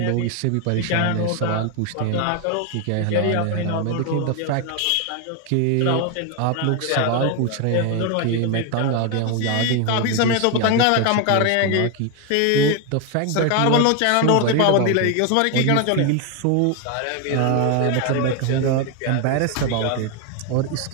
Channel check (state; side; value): different; both; correlation 0.01